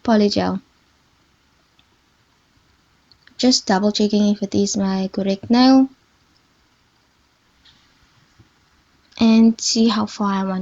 polygel. Just double checking if it is my correct nail and see how far I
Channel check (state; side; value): identical; both; correlation 1.00